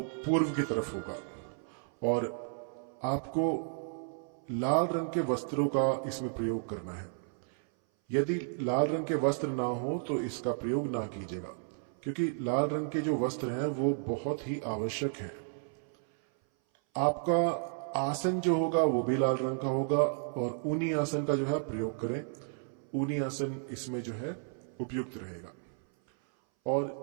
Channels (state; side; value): silent; left; 56 dB below the other